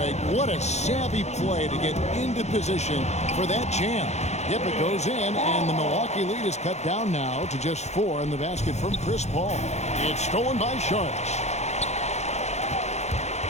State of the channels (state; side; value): late; right; 0.32 ms